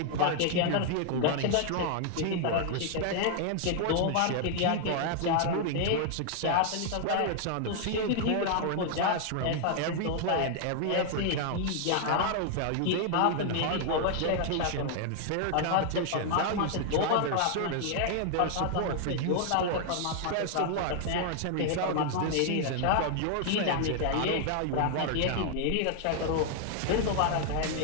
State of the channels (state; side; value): different; both; correlation 0.00